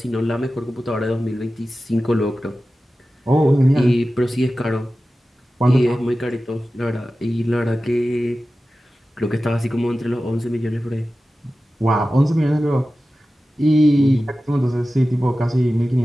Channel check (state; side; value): normal; both; correlation 0.95